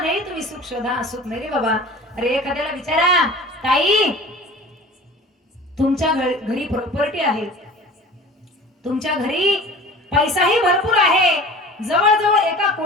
तुम्ही सुख शोधा, सुख नाही रे बाबा. अरे एखाद्याला विचारा, ताई तुमच्या घरी प्रॉपर्टी आहे, तुमच्या घरी पैसाही भरपूर आहे, जवळजवळ 1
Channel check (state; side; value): normal; both; correlation 0.41